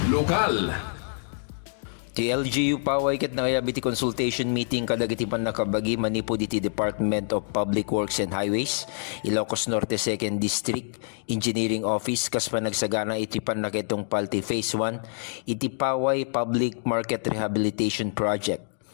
Lokal. Ti LGU paway ket nangayabiti consultation meeting kadagiti pan nakabagi manipo diti Department of Public Works and Highways, Ilocos Norte 2nd District Engineering Office kas panagsagana iti pan nakitong palti Phase 1 iti paway Public Market Rehabilitation Project.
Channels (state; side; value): silent; right; digital silence